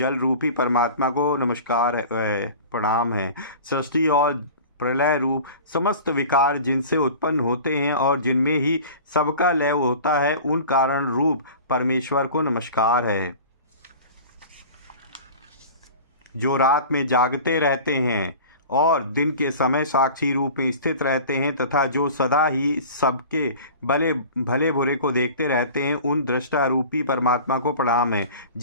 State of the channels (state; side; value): inverted; both; correlation -0.39